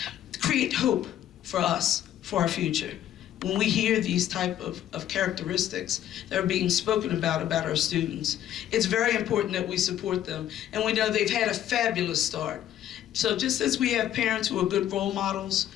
create hope for us, for our future. When we hear these type of characteristics that are being spoken about our students, it's very important that we support them. And we know they've had a fabulous start. So just as we have parents who are good role models,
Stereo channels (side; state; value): right; quieter; 11.5 dB